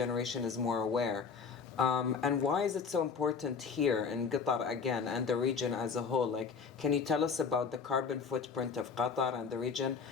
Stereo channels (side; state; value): right; quieter; 5.6 dB